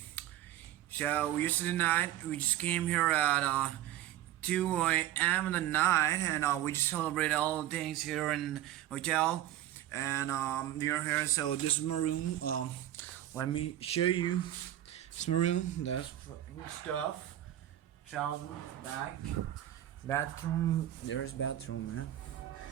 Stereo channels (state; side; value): quieter; left; 13.1 dB